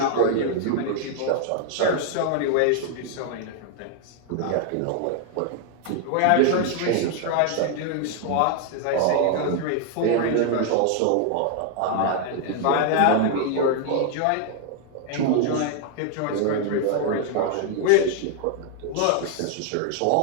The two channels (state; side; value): different; both; correlation 0.00